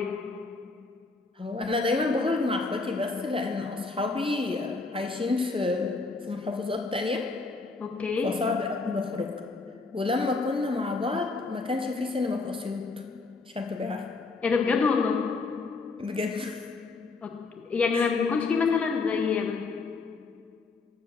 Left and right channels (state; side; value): quieter; right; 3.9 dB